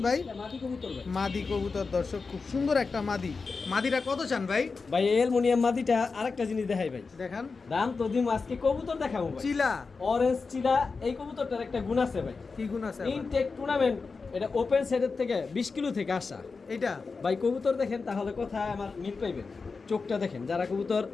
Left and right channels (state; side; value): quieter; right; 4.5 dB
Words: ভাই? এটা মাদি কবুতর ভাই। মাদি কবুতর দর্শক, খুব সুন্দর একটা মাদি। মাদিটা কত চান ভাই? ভাই অ্যালুমিনিয়াম মাদিটা আরেকটা জিনিস দেখাই ভাই। দেখান। দাম তো দিম, আজকে কবুতর দেখাবো ভাই। চিলা, অরেঞ্জ চিলা, এই কবুতরটার একটা গুণ আছে ভাই। কি গুণ আছে আবার? ইনটেক টুর্নামেন্ট, এটা ওপেন সাইডের থেকে 20 কিলো থেকে আসা। এটা ভাই কবুতর দেখেন তাহলে কোথায় আমার মিল পাইবেন। চোখটা দেখেন, যারা কবুতর